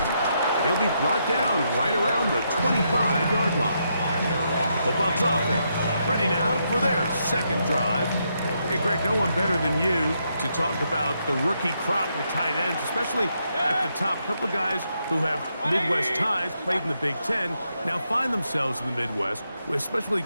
He'll be brought down right around the 25-yard line. The Bucs offense ready now for their 2nd drive. Hey, Greg, no one better than you to talk about the rookie crop with tight ends, especially at the top. A couple of guys who have Midwest ties, played in the Big Ten, now find themselves in the Midwest, especially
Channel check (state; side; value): inverted; both; correlation -0.79